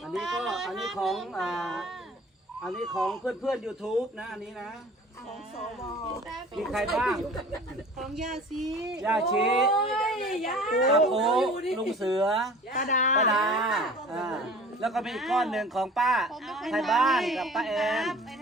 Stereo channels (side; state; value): both; normal; correlation 0.45